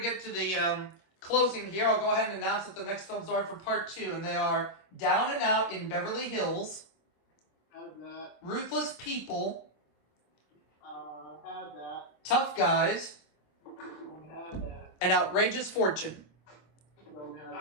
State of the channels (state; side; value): late; right; 26 ms